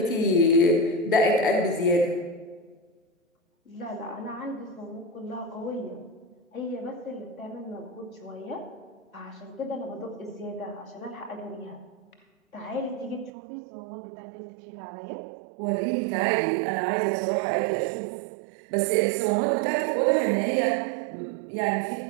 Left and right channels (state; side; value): drops out; left; at 13.3 s